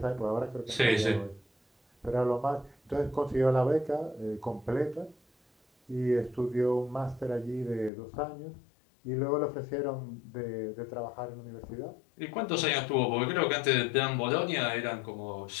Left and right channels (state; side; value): drops out; right; at 7.9 s